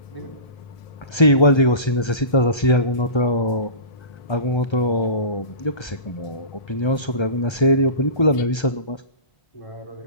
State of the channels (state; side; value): late; right; 1.3 ms